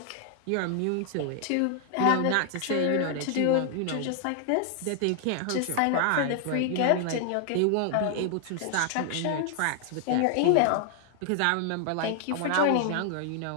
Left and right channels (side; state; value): both; different; correlation 0.00